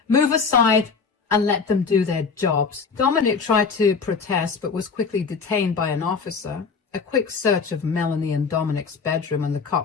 Move aside and let them do their jobs. Dominic tried to protest but was quickly detained by an officer. A quick search of Melanie and Dominic's bedroom, and the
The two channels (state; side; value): quieter; right; 5.2 dB